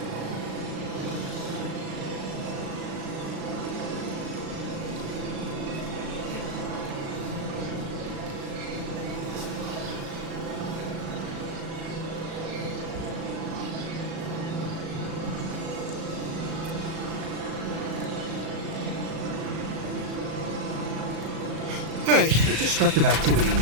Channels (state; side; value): late; left; 36 ms